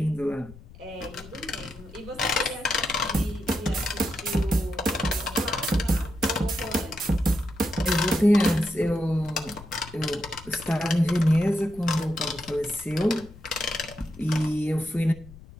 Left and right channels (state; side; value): noise; left; rumble, 19 dB below the sound